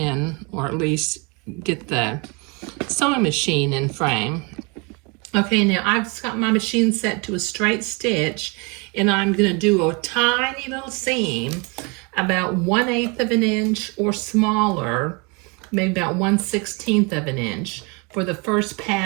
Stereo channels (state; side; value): quieter; left; 30.6 dB